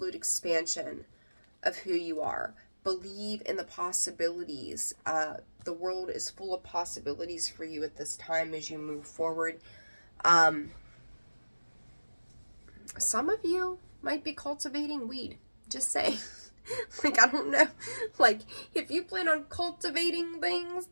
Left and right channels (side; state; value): both; inverted; correlation -1.00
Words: expansion of who you are. Believe in the possibilities. The world is full of possibilities for you at this time as you move forward. Some of you might be cultivating weed. Just saying. Like, I don't know. Like, if you plan on cultivating things,